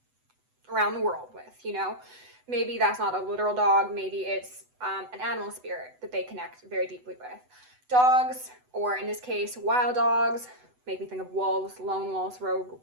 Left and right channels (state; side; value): late; left; 8.0 ms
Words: around the world with, you know? Maybe that's not a literal dog. Maybe it's an animal spirit that they connect very deeply with. Dogs, or in this case, wild dogs, make me think of wolves, lone wolves, rogue